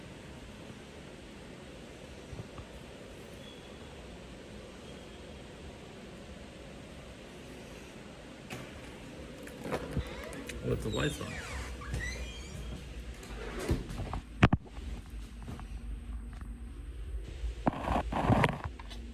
With the lights on.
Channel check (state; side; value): identical; both; correlation 1.00